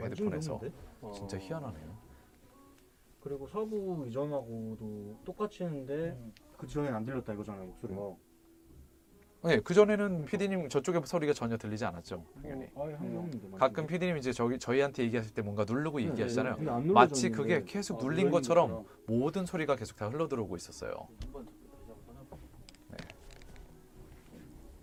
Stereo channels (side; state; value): both; identical; correlation 1.00